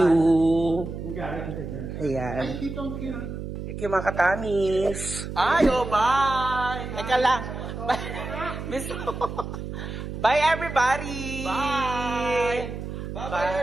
Ayan. Thank you, mga katamis. Ayo, bye! Teka lang. Bye, everybody! Bye! Bye,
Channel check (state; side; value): noise; right; hum, 7 dB below the sound